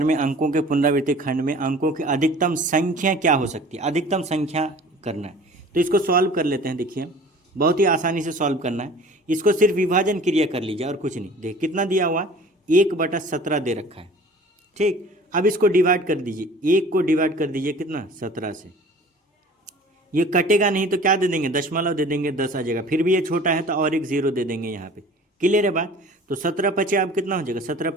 में अंकों के पुनरावृत्ति खंड में अंकों की अधिकतम संख्या क्या हो सकती है, अधिकतम संख्या करना है। तो इसको सॉल्व कर लेते हैं। देखिए बहुत ही आसानी से सॉल्व करना है। इसको सिर्फ विभाजन क्रिया कर लीजिए और कुछ नहीं। देख कितना दिया हुआ, 1/17 दे रखा है। ठीक, अब इसको डिवाइड कर दीजिए, 1 को डिवाइड कर दीजिए कितना, 17 से। ये कटेगा नहीं तो क्या दे देंगे, दशमलव दे देंगे, 10 आ जाएगा। फिर भी ये छोटा है तो और एक 0 दे देंगे यहाँ पे। क्लियर है बात। तो 17×5 अब कितना हो जाएगा,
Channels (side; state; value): both; normal; correlation 0.45